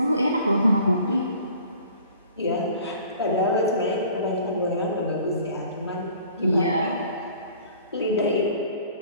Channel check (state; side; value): inverted; both; correlation -0.50